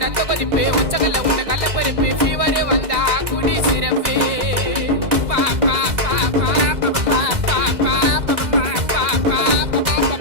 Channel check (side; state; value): left; late; 2.0 ms